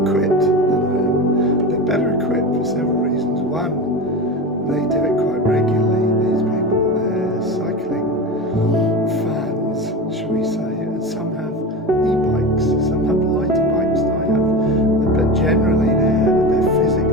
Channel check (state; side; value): normal; both; correlation 0.25